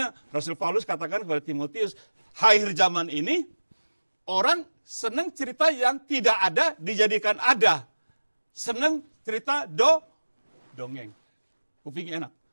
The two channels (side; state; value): both; inverted; correlation -1.00